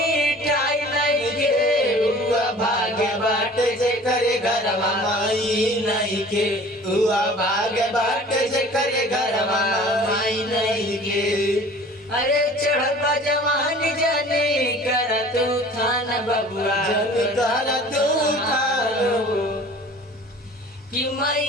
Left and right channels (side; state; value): both; normal; correlation 0.46